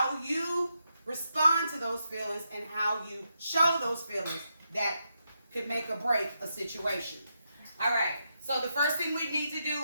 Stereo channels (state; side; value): inverted; both; correlation -0.83